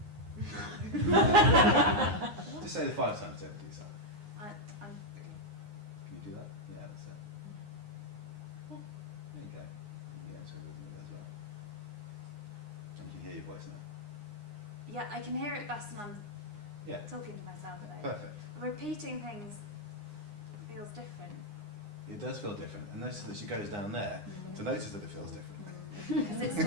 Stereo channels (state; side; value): late; left; 9.7 ms